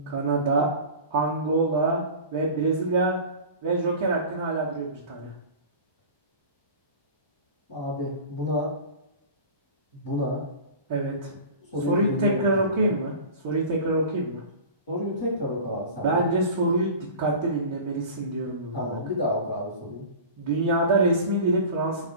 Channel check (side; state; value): both; inverted; correlation -0.36